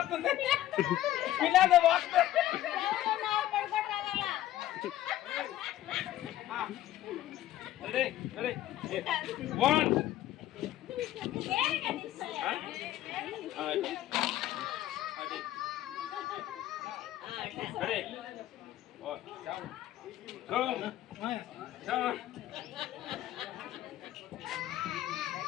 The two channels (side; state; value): right; quieter; 13.7 dB